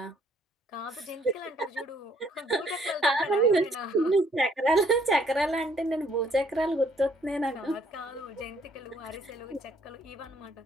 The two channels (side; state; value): both; normal; correlation 0.64